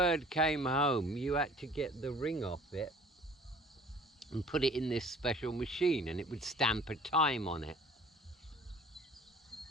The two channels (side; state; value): both; normal; correlation 0.49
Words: came home, you had to get the ring off it and put it in this special machine, and it would stamp a time on it.